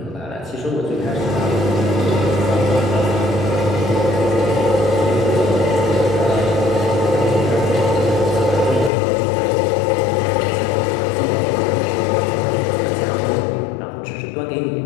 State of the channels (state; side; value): drops out; right; at 8.9 s